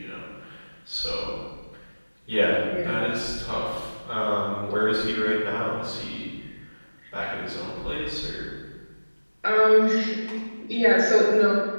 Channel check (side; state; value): both; inverted; correlation -1.00